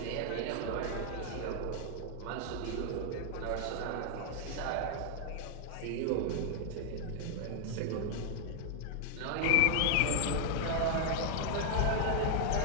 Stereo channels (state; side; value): different; both; correlation 0.00